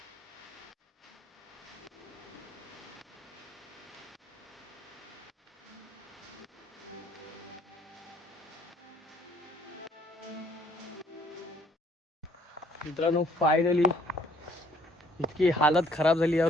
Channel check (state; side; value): normal; both; correlation 0.62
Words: मित्रांनो फायनली इतकी हालत खराब झाली. या